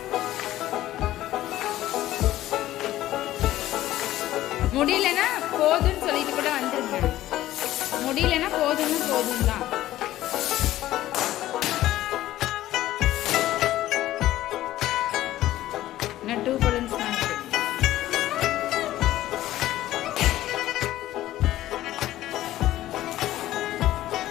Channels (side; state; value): right; quieter; 14.6 dB